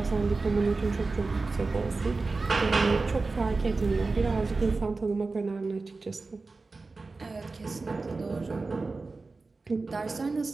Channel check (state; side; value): quieter; left; 3.8 dB